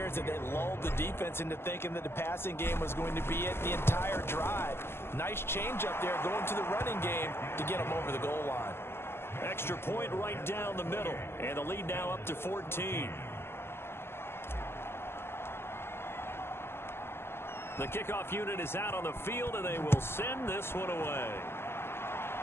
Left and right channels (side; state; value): right; late; 0.12 ms